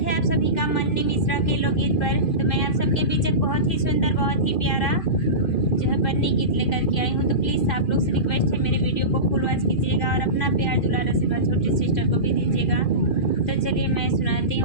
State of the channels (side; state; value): right; late; 2.4 ms